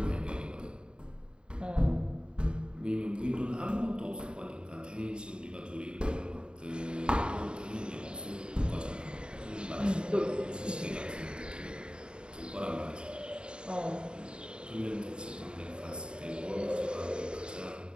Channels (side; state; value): left; late; 0.051 ms